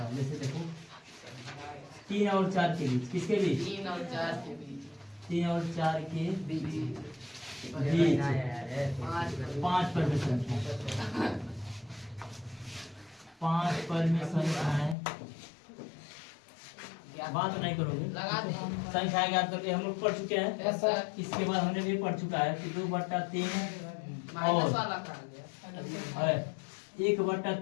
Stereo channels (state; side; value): drops out; right; at 15.0 s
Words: जैसे देखो 3 और 4 के बीच, किसके बीच? 3 और 4 के बीच। 3 और 4 के बीच 5 परिमेय संख्या, 5 परिमेय संख्याएं। बात नहीं करोगे, संख्या ज्ञात करके हम लोग पढ़ चुके हैं। इसके बाद हमने भी पढ़ चुका है कि 2/3 और